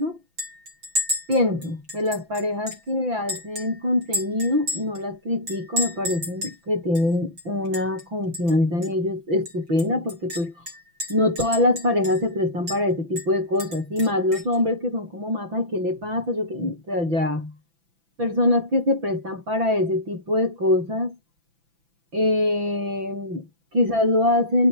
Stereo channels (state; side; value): late; left; 6.0 ms